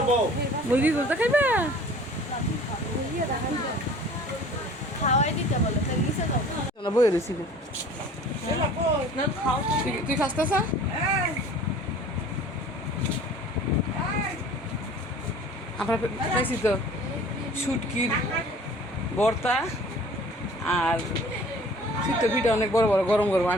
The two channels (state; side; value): normal; both; correlation 0.47